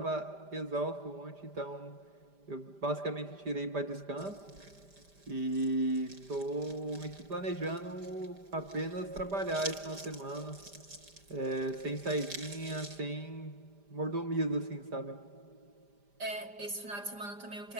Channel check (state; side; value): late; left; 5.0 ms